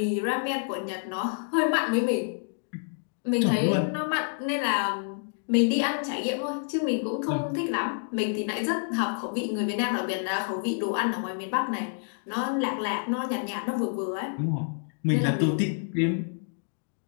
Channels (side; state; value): right; silent; digital silence